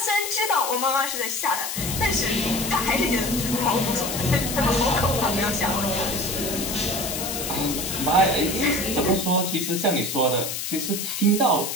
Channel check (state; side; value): noise; left; hiss, 4 dB below the sound